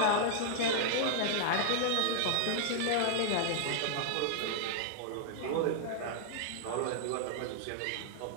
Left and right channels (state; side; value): different; both; correlation 0.00